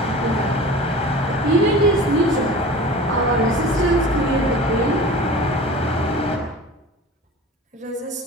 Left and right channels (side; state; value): both; normal; correlation 0.38